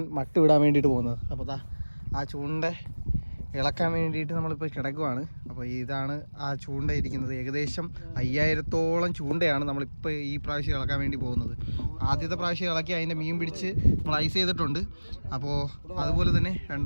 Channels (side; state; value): both; inverted; correlation -1.00